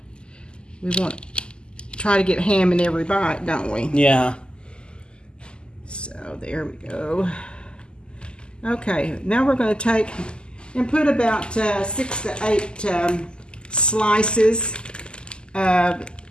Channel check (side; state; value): right; late; 0.048 ms